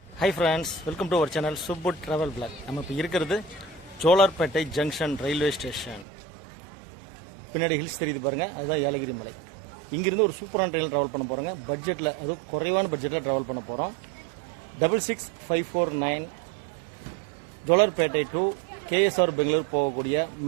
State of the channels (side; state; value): left; drops out; at 6.1 s